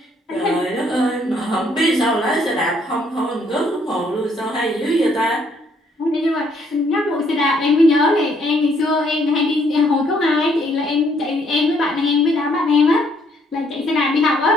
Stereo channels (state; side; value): normal; both; correlation 0.67